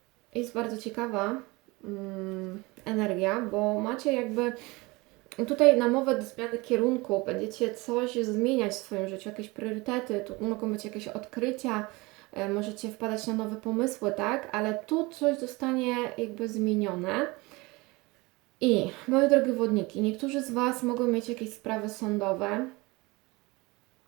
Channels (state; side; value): quieter; left; 23.8 dB